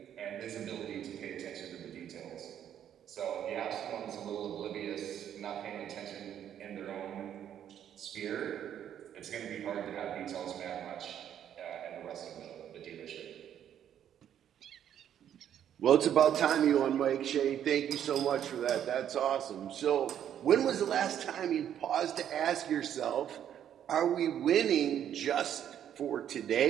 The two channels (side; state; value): left; quieter; 9.9 dB